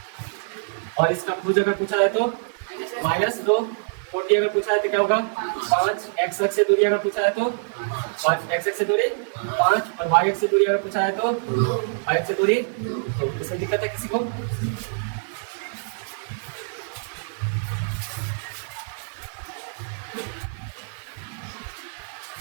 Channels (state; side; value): silent; left; 62 dB below the other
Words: और इसका भुज अगर पूछा जाए तो -2। कोटि अगर पूछा जाए तो क्या होगा 5। x अक्ष से दूरी अगर पूछा जाए तो 5 x x से दूरी 5 और y x से दूरी अगर पूछा है तो y x से दूरी, तो इसमें दिक्कत है किसी को?